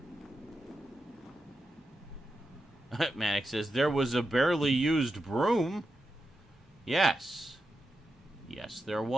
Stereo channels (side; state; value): both; normal; correlation 0.88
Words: Manic says, there was a barely used broom. Yes. Yes, there